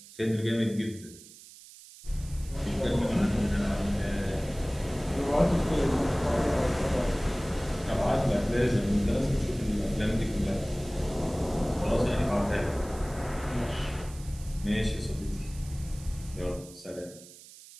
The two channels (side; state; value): right; noise; hiss, 19 dB below the sound